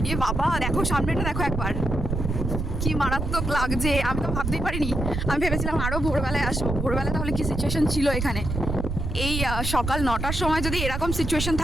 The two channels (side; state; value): right; noise; rumble, 3 dB below the sound